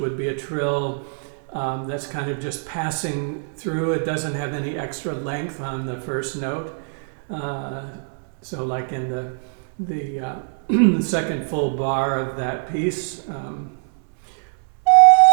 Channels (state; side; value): silent; left; 63 dB below the other